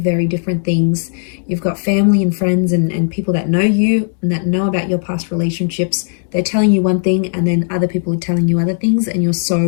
very different things. You've got family and friends and people that know you and that know about your past relationships. They're telling you one thing, and then other people are telling you other things, and you're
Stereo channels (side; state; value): right; silent; digital silence